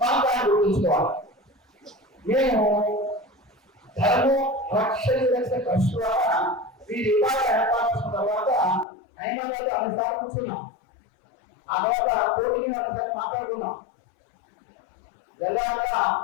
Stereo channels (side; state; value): right; drops out; at 8.8 s